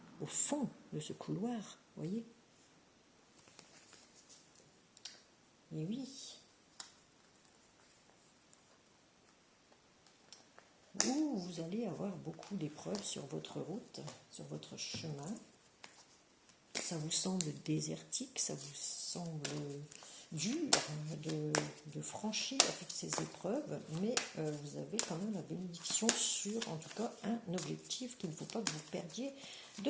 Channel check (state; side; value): identical; both; correlation 1.00